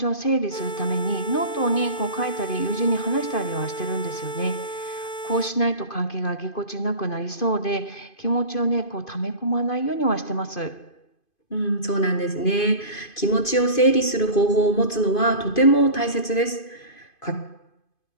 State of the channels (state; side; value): late; right; 2.5 ms